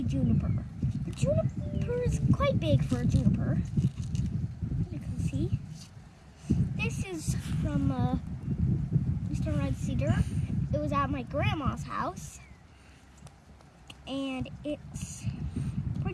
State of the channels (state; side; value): identical; both; correlation 1.00